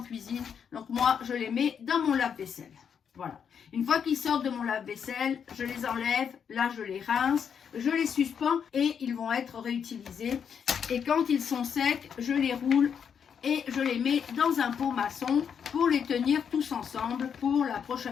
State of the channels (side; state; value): right; quieter; 7.4 dB